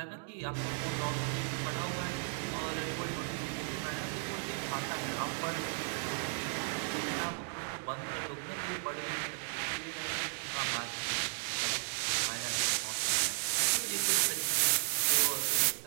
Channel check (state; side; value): silent; left; 54 dB below the other